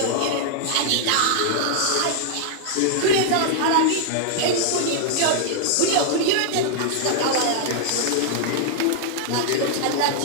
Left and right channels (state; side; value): different; both; correlation -0.01